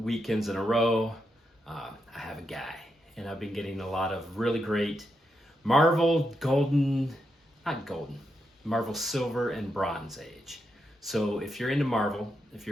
in a row, I have a guy, and I've been getting a lot of really great Marvel Marvel Silver and Bronze Age. So if you're into Marvel, if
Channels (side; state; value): both; normal; correlation 0.83